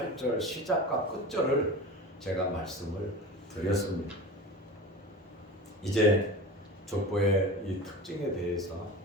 시작과 끝절을 제가 말씀을 드렸습니다. 이제 족보의 이 특징에 대해서,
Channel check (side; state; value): both; normal; correlation 0.31